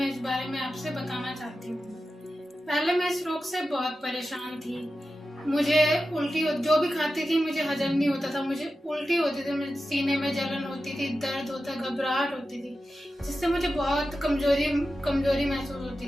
इस बारे में आपसे बताना चाहती हूँ। पहले मैं इस रोग से बहुत परेशान थी। मुझे उल्टी, जो भी खाती थी मुझे हजम नहीं होता था, मुझे उल्टी होती थी, मुझे सीने में जलन होती थी, दर्द होता, घबराहट होती थी, जिससे मुझे बहुत कमजोरी कमजोरी महसूस होती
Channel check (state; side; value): normal; both; correlation 0.92